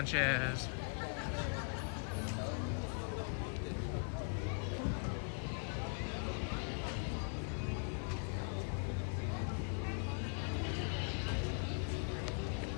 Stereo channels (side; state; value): right; silent; 51 dB below the other